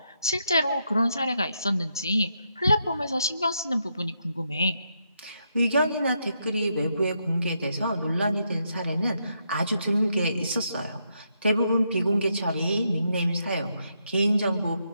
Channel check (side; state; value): both; inverted; correlation -0.79